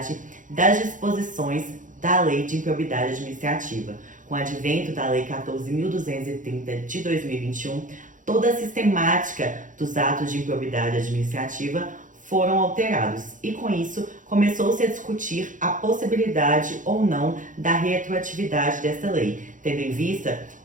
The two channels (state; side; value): late; left; 0.37 ms